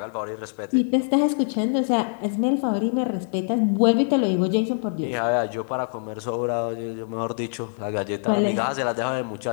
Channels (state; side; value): silent; right; digital silence